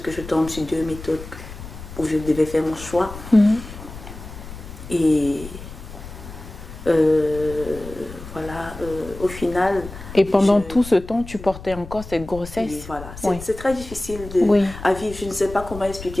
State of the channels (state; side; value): noise; left; rumble, 13 dB below the sound